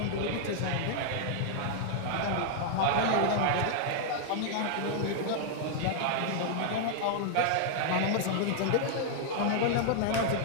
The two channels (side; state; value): both; different; correlation 0.00